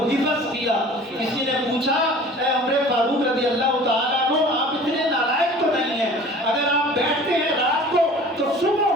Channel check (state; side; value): normal; both; correlation 0.45